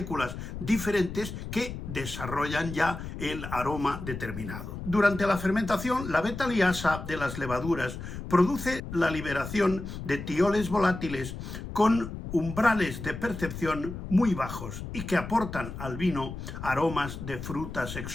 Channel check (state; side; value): noise; left; rumble, 8 dB below the sound